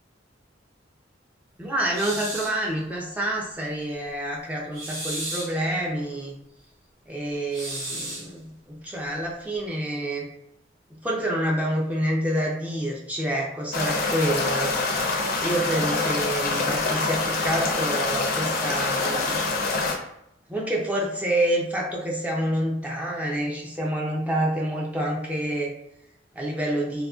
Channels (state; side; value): normal; both; correlation 0.40